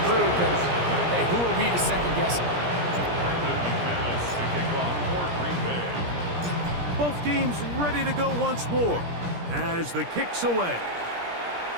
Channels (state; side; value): late; left; 17 ms